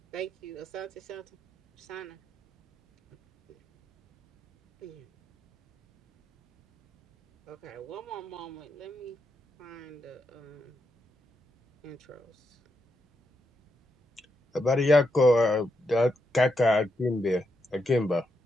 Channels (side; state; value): both; normal; correlation 0.83